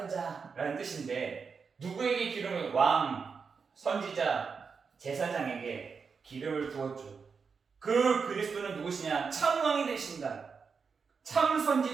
자라는 뜻인데, 누구에게 기름을? 왕, 선지자, 제사장에게 기름을 부었죠. 그 그리스도는 누구시냐? 참왕이 되신다. 참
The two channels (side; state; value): left; quieter; 5.5 dB